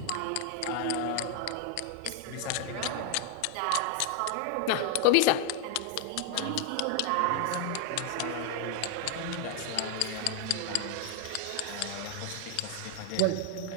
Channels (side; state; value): both; different; correlation 0.00